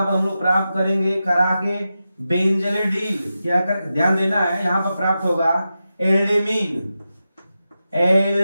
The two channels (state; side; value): inverted; both; correlation -0.91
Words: पर हम लोग प्राप्त करेंगे करा के बेंजलिडीन, क्या कर, ध्यान देना है, यहाँ पर प्राप्त होगा एल्डीमीन